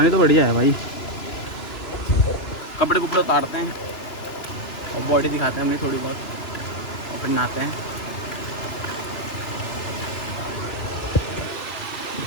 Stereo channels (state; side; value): late; right; 2.9 ms